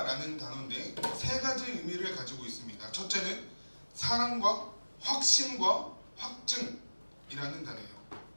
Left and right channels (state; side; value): inverted; both; correlation -1.00